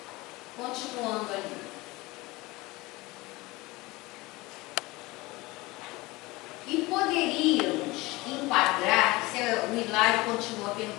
Continuando ali. E poderíamos enquadrar, o Hilário continua a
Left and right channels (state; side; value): quieter; right; 21.7 dB